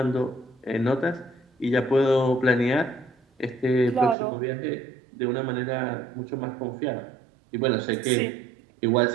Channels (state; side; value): drops out; left; at 4.2 s